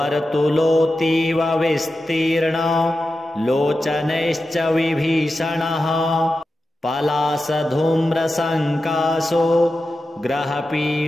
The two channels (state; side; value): normal; both; correlation 0.92